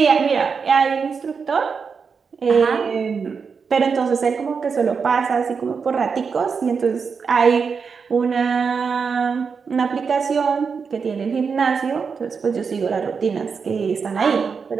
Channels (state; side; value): quieter; left; 5.7 dB